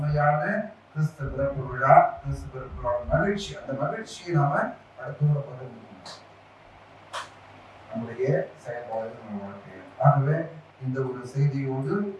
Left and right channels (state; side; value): identical; both; correlation 1.00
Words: கிறிஸ்து பிறப்பு விழா, கிறிஸ்து பிறப்பு விழா மகிழ்ச்சி. அந்த மகிழ்ச்சியை நாம அடுத்தவரை பகிர்ந்து நம்முடைய செயல்பாடுகள் நம்ம வாழ்க்கையில். ஆகவே இந்த ஒரு செய்தியோடு